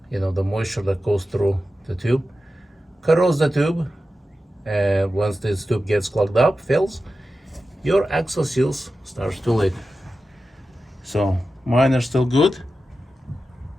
the moisture that goes through the tube corrodes the tube. And once this tube gets clogged up, fills, your axle seals starts to leak. So mine are still good.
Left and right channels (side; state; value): both; normal; correlation 0.93